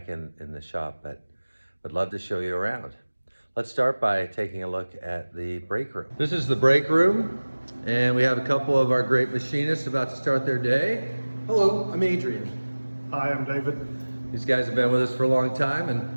in the shop, but would love to show you around. Let's start by taking a look at the break room. This is the break room and we have a couple of our great machinists about to start their day. Hello, I'm Adrian. Hi, I'm David. These guys have been with us for a long time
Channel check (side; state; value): both; inverted; correlation -1.00